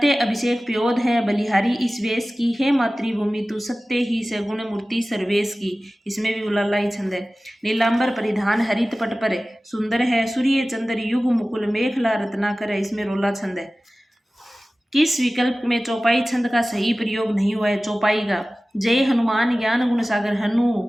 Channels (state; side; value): normal; both; correlation 0.97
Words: अभिषेक प्योद है बलिहारी इस वेश की, हे मातृभूमि तू सत्य ही से गुण मूर्ति सर्वेश की, इसमें भी उलाला ही छंद है। नीलांबर परिधान हरित पट पर सुंदर है, सूर्य चंद्र युग मुकुल मेखला रत्नाकर है, इसमें रोला छंद है। किस विकल्प में चौपाई छंद का सही प्रयोग नहीं हुआ है? चौपाई का, जय हनुमान ज्ञान गुण सागर, हनु